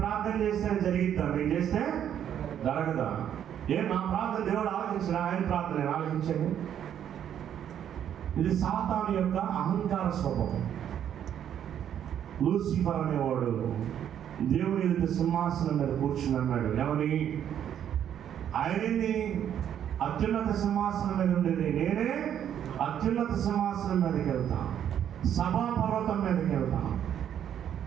ప్రార్థన చేస్తే జరిగిద్దాం, నేను చేస్తే జరగదా? నా ప్రార్థన దేవుడు ఆలోచించిన, ఆయన ప్రార్థన ఆలోచించండి. ఇది సాతాను యొక్క అహంకార స్వభావం. లూసిఫర్ అనేవాడు దేవుని ఎదుట సింహాసనం మీద కూర్చుని అన్నాడు. ఏమని? ఆయనని అత్యున్నత సింహాసనం మీద ఉండేది నేనే అత్యున్నత సింహాసనం మీదకి వెళ్తాను, సభాపర్వతం మీదకి వెళ్తాను,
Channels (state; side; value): quieter; left; 9.7 dB